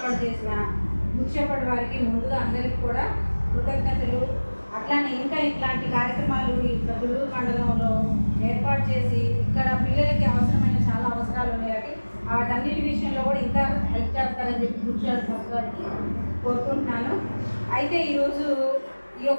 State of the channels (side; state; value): both; inverted; correlation -1.00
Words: చేసిన ముఖ్యపడి వారికి ముందుగా అందరికీ కూడా కృతజ్ఞతలు. అట్లానే ఇంకా ఇట్లాంటి కార్యక్రమాలు ఇక్కడ తుళ్ళూరు మండలంలో ఏర్పాటు చేసి ఇక్కడ పిల్లలకి అవసరమైన చాలా అవసరాలు ఉన్నాయి. వాటన్నిటి విషయంలో కూడా ఇంకా హెల్ప్ చేస్తారని చెప్పి గురుచారి సంస్థ గారికి కోరుకుంటున్నాను. అయితే ఈరోజు ఈ